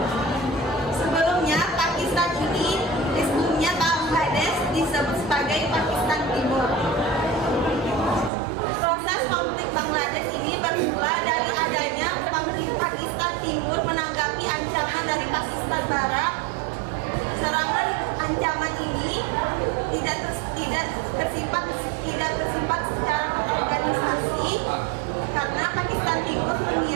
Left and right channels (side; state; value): left; drops out; at 8.3 s